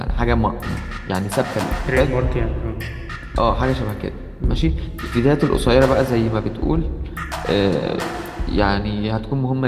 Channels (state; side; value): identical; both; correlation 1.00